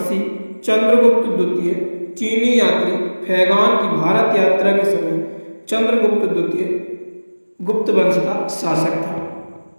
चंद्रगुप्त द्वितीय। चीनी यात्री फैगान की भारत यात्रा के समय चंद्रगुप्त द्वितीय गुप्त वंश का शासक था।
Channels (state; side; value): inverted; both; correlation -1.00